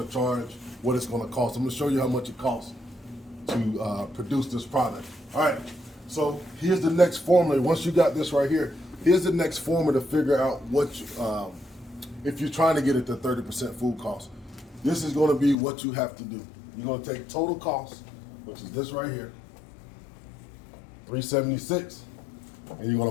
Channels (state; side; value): drops out; right; at 15.6 s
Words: to charge what it's going to cost. I'm going to show you how much it costs to produce this product. All right, so here's the next formula. Once you got this right here, here's the next formula to figure out what, if you're trying to get it to 30% food cost. This is going to be what you have to do. You're going to take total cost which is this right here, $3.76, and you're gonna